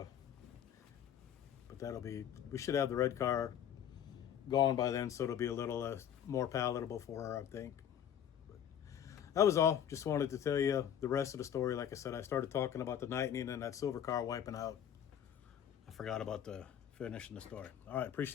we should have the red car gone by then, so it'll be a little more palatable for her, I think. But that was all. Just wanted to tell you the rest of the story. Like I said, I started talking about the Lightning and that silver car wiping out. I forgot about finishing the story. All right,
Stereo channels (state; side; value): quieter; right; 9.5 dB